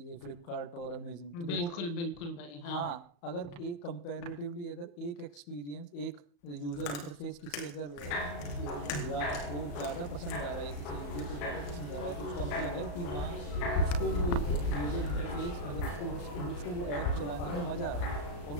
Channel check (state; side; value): late; right; 35 ms